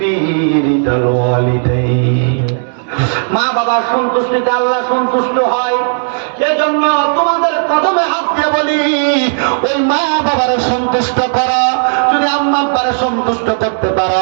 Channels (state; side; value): silent; left; digital silence